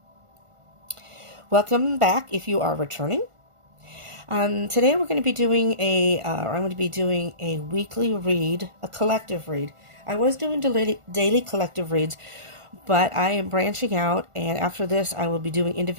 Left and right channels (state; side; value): late; left; 1.4 ms